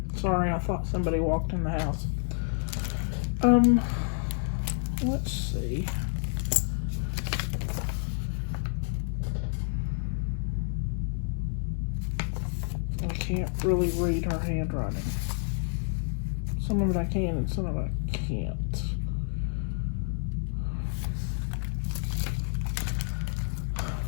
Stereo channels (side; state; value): right; silent; digital silence